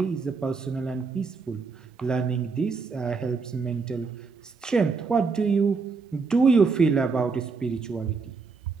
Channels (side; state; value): left; quieter; 4.7 dB